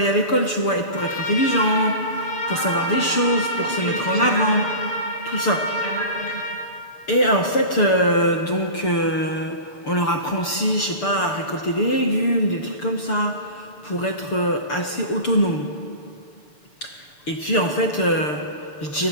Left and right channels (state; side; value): late; right; 6.8 ms